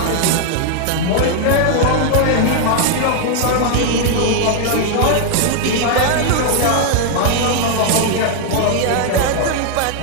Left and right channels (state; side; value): different; both; correlation 0.00